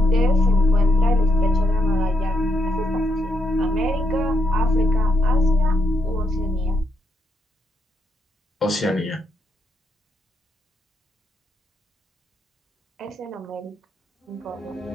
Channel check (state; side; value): normal; both; correlation 0.78